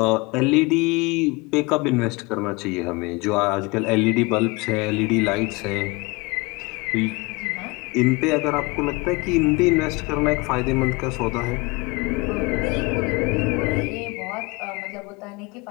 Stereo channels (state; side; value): quieter; right; 25.1 dB